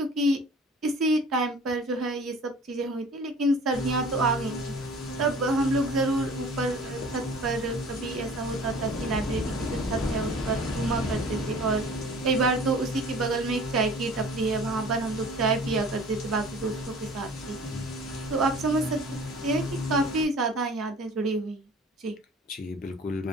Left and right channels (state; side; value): normal; both; correlation 0.45